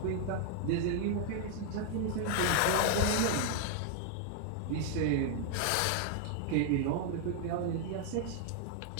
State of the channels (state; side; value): different; both; correlation 0.00